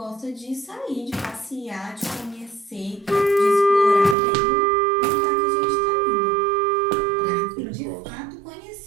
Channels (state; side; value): drops out; left; at 4.2 s